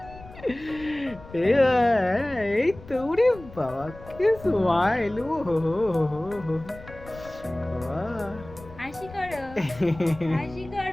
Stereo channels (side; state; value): left; noise; rumble, 18 dB below the sound